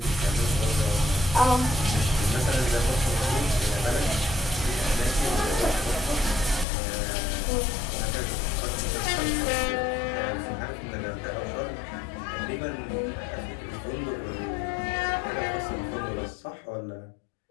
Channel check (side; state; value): right; drops out; at 6.7 s